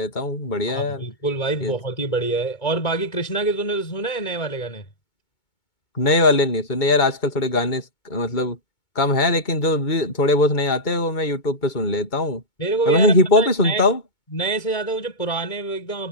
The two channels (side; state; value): right; late; 2.2 ms